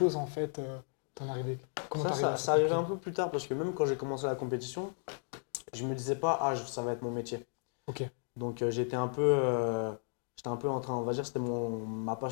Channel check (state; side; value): silent; right; 55 dB below the other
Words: en fait, t'en arrivé? Comment Ça, t'es arrivé ça, à ça cette arrivait conclusion? un peu plus tard parce que même quand j'ai commencé la compétition, je me disais pas, ah, ça va être mon métier. Ok, Donc j'étais un peu en train, on va dire, c'était ma